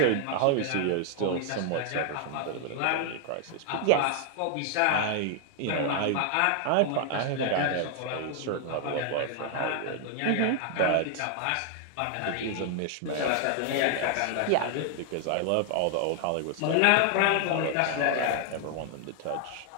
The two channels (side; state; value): both; different; correlation 0.00